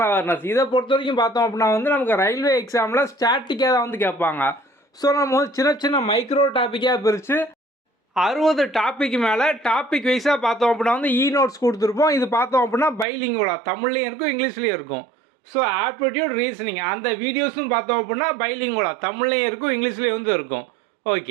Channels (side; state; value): left; drops out; at 13.1 s